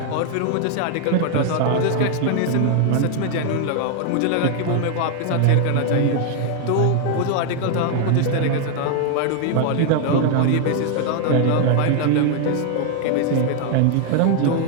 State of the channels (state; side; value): different; both; correlation 0.00